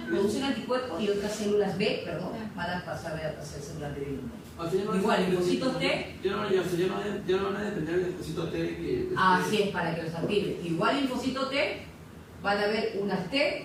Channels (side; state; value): both; identical; correlation 1.00